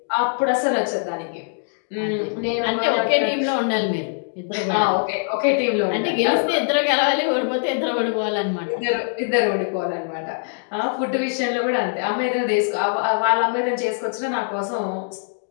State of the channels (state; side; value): silent; right; digital silence